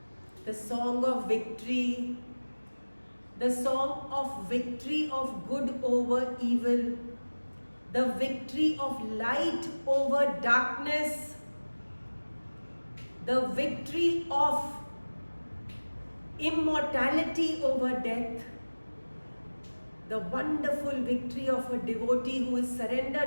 the song of victory, the song of victory of good over evil, the victory of light over darkness, the victory of immortality over death, the wonderful victory of a devotee who is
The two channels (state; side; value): inverted; both; correlation -1.00